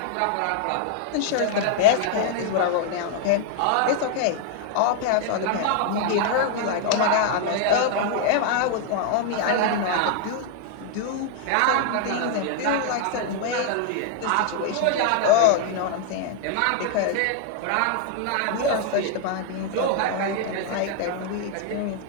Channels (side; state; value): both; different; correlation 0.00